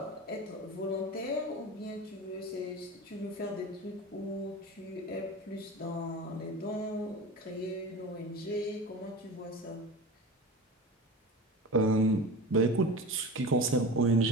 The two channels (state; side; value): normal; both; correlation 0.31